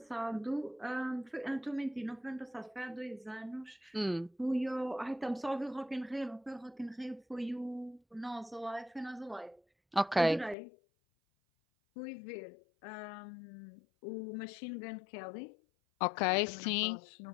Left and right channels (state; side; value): drops out; right; at 10.6 s